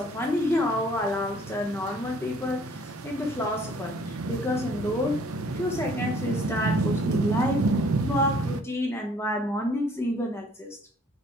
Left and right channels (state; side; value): normal; both; correlation 0.57